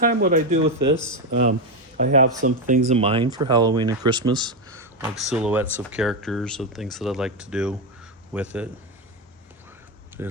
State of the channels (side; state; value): both; normal; correlation 0.08